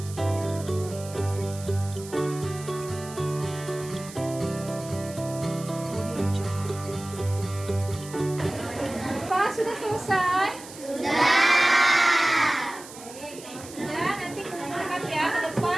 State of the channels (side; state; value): right; noise; hiss, 16 dB below the sound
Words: Pak, sudah selesai? Ya, nanti kumpulkan ya ke